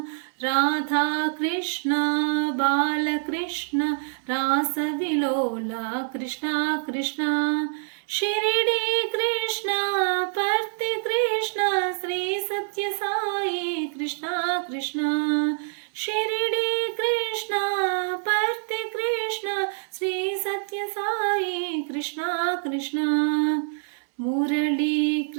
రాధా కృష్ణ బాలకృష్ణ రాసవిలోల కృష్ణ కృష్ణ షిరిడి కృష్ణ పర్తి కృష్ణ శ్రీ సత్య సాయి కృష్ణ కృష్ణ షిరిడి కృష్ణ పర్తి కృష్ణ శ్రీ సత్య సాయి కృష్ణ కృష్ణ మురళీ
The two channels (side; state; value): left; silent; digital silence